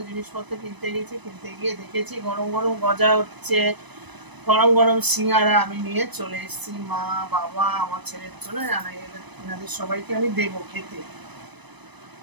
জিনিসপত্র কিনতে গেছি। কিনতে গিয়ে দেখেছি গরম গরম গজা হচ্ছে, গরম গরম সিঙ্গারা আমি নিয়ে চলে এসেছি। মা, বাবা, আমার ছেলের জন্য এনাদের সবাইকে আমি দেবো খেতে।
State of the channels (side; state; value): left; late; 1.0 ms